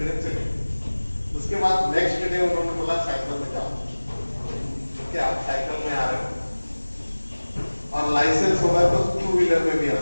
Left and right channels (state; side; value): inverted; both; correlation -1.00